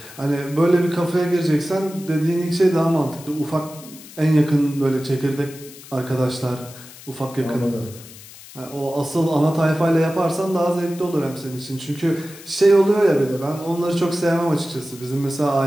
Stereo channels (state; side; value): noise; left; hiss, 18 dB below the sound